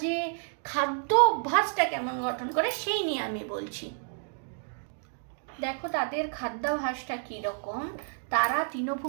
যে খাদ্য অভ্যাসটা কেমন গঠন করে সেই নিয়ে আমি বলছি। দেখো তাদের খাদ্যাভ্যাসটা কীরকম, তারা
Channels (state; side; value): silent; left; 58 dB below the other